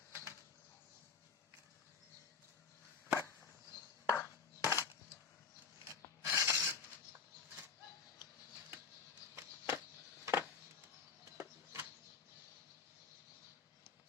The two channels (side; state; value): right; quieter; 5.9 dB